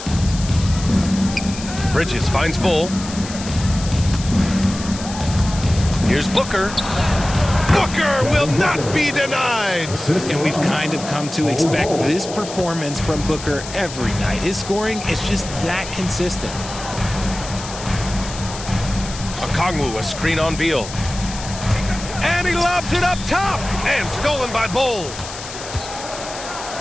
Bridges finds Bull. Here's Booker. Booker will not be denied. And we've kind of come to expect this performance from Booker every night. His scoring is just that consistent. Okongwu, a screen on Beal. And he lobs it up top. And stolen by Bull.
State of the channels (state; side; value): noise; left; hiss, 11 dB below the sound